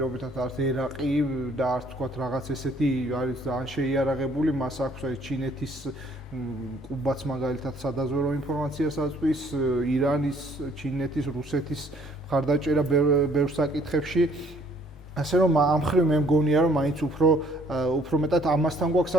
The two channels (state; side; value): normal; both; correlation 0.62